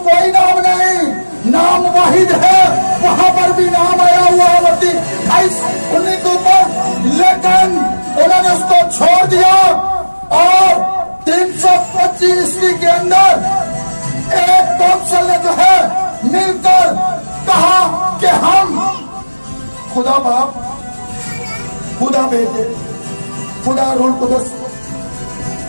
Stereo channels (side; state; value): both; inverted; correlation -1.00